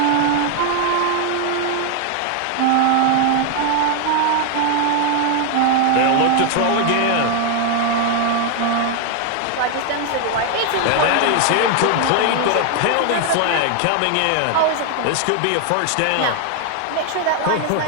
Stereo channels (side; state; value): both; different; correlation 0.00